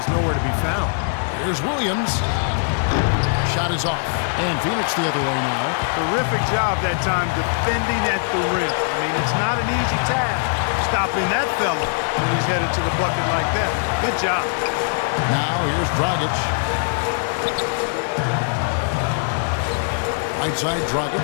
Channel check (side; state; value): right; silent; 62 dB below the other